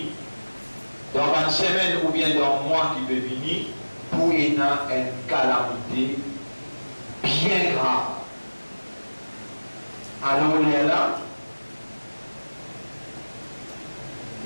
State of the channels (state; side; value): inverted; both; correlation -1.00